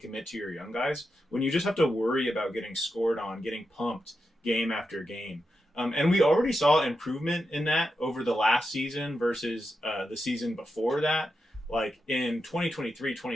to your young guys when you just have to worry about getting scored on, getting pumped game after game. And we already saw improvement in that over the last season versus the season before that. Like in 2023,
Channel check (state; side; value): normal; both; correlation 0.87